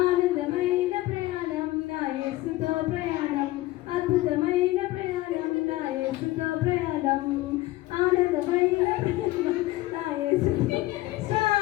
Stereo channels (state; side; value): quieter; right; 17.9 dB